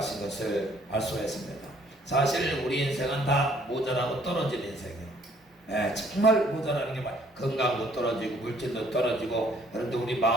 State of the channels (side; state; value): both; normal; correlation 0.61